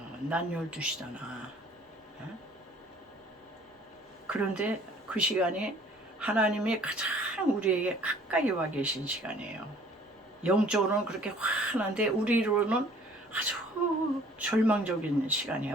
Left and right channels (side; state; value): both; normal; correlation 0.54